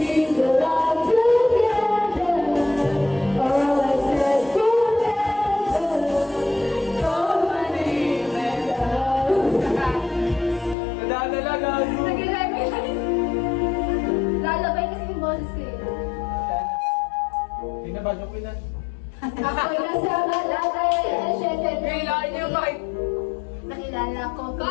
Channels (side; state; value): right; drops out; at 10.8 s